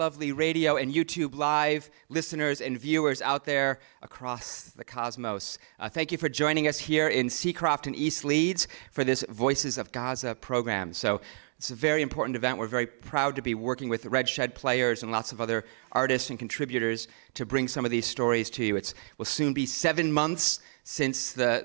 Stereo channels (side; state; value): left; silent; digital silence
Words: radio and YouTube live listeners and viewers out there across the cosmos. Thank you for joining us here in Seacroft and East Leeds for this Voices of Gaza program. So it's a very important event. We're very proud to be working with Red Shed players and lots of other artists and contributors to bring some of these stories to you. It will soon be 7 months since